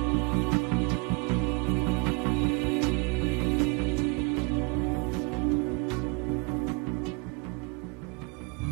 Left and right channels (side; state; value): left; quieter; 29.6 dB